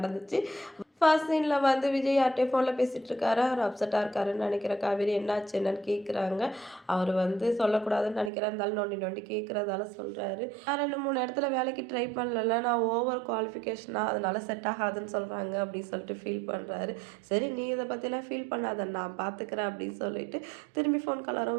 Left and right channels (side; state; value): left; drops out; at 8.3 s